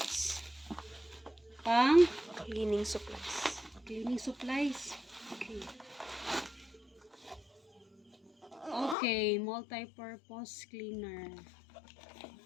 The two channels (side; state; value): right; drops out; at 9.0 s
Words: Pang? Cleaning supplies. Cleaning supplies. Okay. Okay, multi-purpose cleaner.